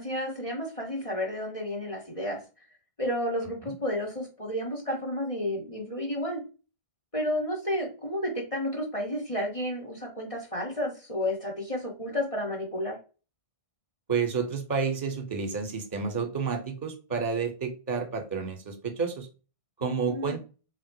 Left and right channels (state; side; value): late; right; 1.6 ms